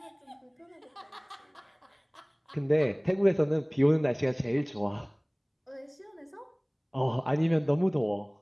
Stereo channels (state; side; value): identical; both; correlation 1.00